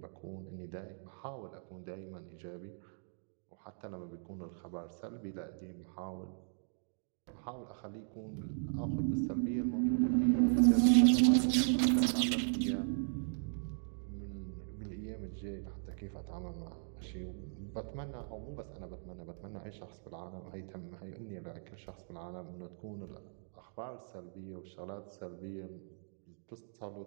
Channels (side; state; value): left; silent; digital silence